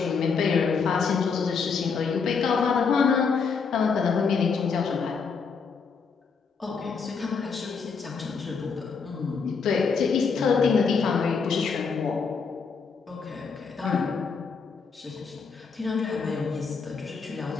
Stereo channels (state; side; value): quieter; right; 5.4 dB